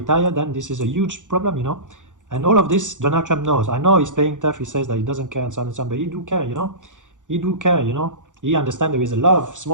then this is a huge problem, you know. And all of this, Donald Trump knows. I know he's playing tough, he says that he doesn't care and so on and so on, but he do care, you know. He do care, you know. He understands there is a lot of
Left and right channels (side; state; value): left; late; 0.86 ms